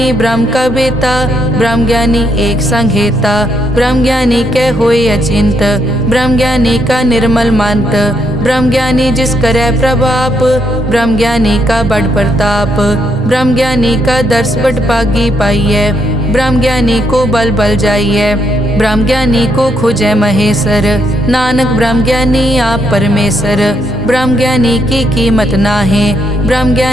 ब्रह्म का बेटा, ब्रह्म ज्ञानी एक संग हेता। ब्रह्म ज्ञानी के होए अचिंत, ब्रह्म ज्ञानी का निर्मल मंत। ब्रह्म ज्ञानी जिस करे प्रभाप, ब्रह्म ज्ञानी का बड़ प्रताप। ब्रह्म ज्ञानी का दर्श बड़ पागी पाइये, ब्रह्म ज्ञानी को बल बल जाइए। ब्रह्म ज्ञानी को खोजे महेश्वर, नानक ब्रह्म ज्ञानी आप परमेश्वर। ब्रह्म ज्ञानी की कीमत नाहे, ब्रह्म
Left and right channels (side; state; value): both; normal; correlation 0.76